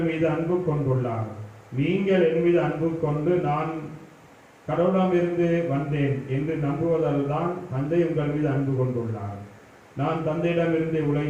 மீது அன்பு கொண்டுள்ளார். நீங்கள் என் மீது அன்பு கொண்டு நான் கடவுளமிருந்து வந்தேன் என்று நம்புவதால் தான் தந்தை உங்கள் மீது அன்பு கொண்டுள்ளார். நான் தந்தையிடமிருந்து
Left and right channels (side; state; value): both; identical; correlation 1.00